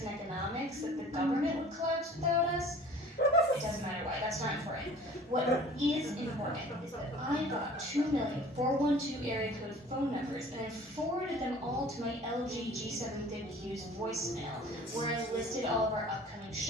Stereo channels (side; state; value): both; normal; correlation 0.47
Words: and economics that the government would collapse without us. It doesn't matter why, that's not important. What is important is that I got 2,412 area code phone numbers and I forwarded them all to my LG G750Q's voicemail, where I listed all of our upcoming